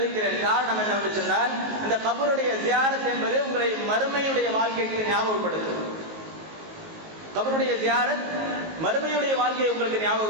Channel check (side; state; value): left; late; 19 ms